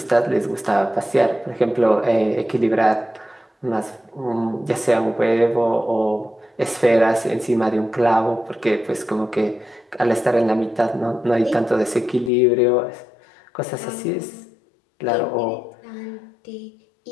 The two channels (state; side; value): drops out; right; at 12.3 s